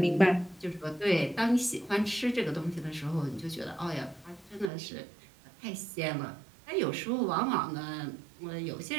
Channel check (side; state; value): left; drops out; at 4.7 s